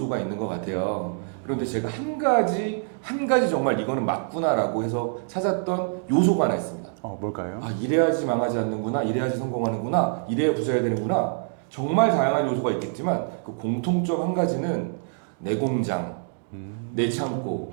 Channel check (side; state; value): left; silent; digital silence